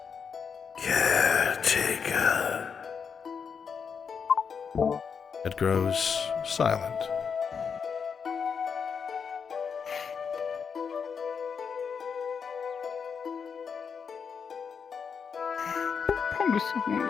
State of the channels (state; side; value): quieter; right; 6.3 dB